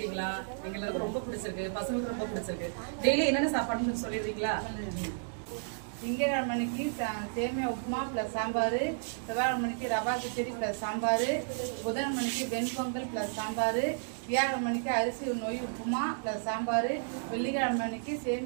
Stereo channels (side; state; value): left; silent; digital silence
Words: எங்களுக்கு ரொம்ப பிடிச்சிருக்கு. பசங்களுக்கு ரொம்ப பிடிச்சிருக்கு. டெய்லி என்னென்ன சாப்பாடுன்னு சொல்லிடுறீங்களா? திங்கட்கிழமைக்கு சேமியா உப்புமா ப்ளஸ் சாம்பார், செவ்வாய்க்கிழமைக்கு ரவா கிச்சடி ப்ளஸ் சாம்பார், புதன்கிழமைக்கு வெண்பொங்கல் ப்ளஸ் சாம்பார், வியாழக்கிழமைக்கு அரிசி நொய் உப்புமா ப்ளஸ் சாம்பார், வெள்ளிக்கிழமைக்கு